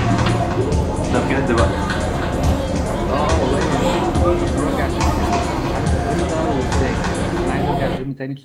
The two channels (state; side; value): identical; both; correlation 1.00